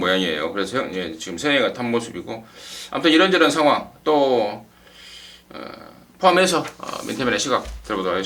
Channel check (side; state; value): both; identical; correlation 1.00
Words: 그래서 지금 세영이가 탄 모습이고 아무튼 이런저런 상황 또 포함해서 민태민의 시각 들어보도록